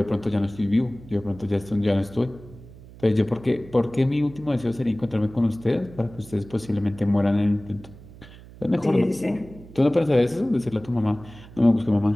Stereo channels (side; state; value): right; noise; hum, 19 dB below the sound